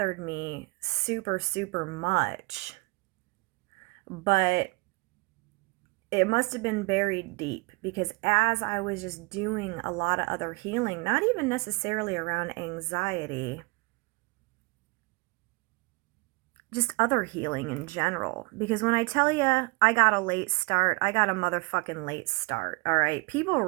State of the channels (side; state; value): left; quieter; 28.1 dB